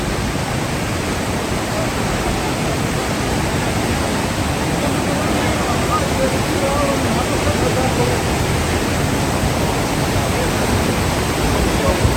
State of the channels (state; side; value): identical; both; correlation 1.00